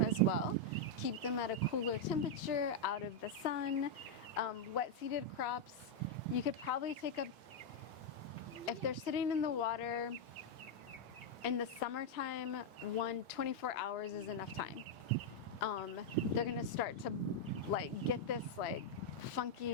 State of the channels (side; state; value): both; normal; correlation -0.01